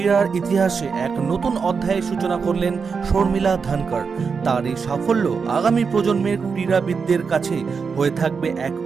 ইতিহাসে এক নতুন অধ্যায়ের সূচনা করলেন শর্মিলা ধনকর। তার এই সাফল্য আগামী প্রজন্মের ক্রীড়াবিদদের কাছে হয়ে থাকবে এক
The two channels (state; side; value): quieter; left; 5.5 dB